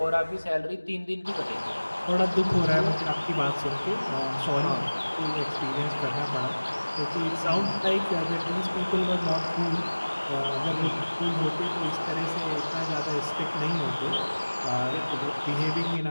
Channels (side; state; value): both; inverted; correlation -1.00